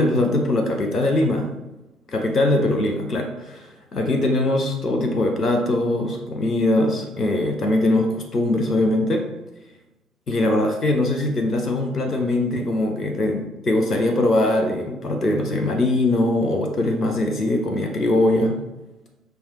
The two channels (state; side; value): normal; both; correlation 0.69